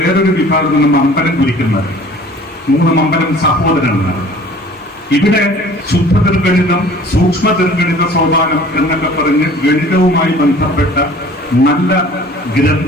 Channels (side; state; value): both; normal; correlation 0.48